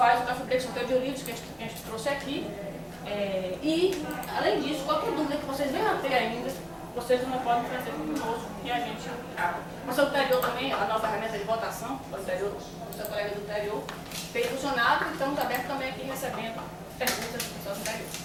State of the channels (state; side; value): identical; both; correlation 1.00